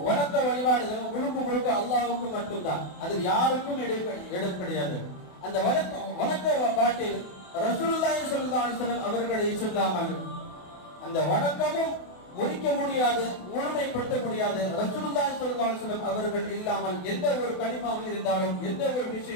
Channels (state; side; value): late; right; 28 ms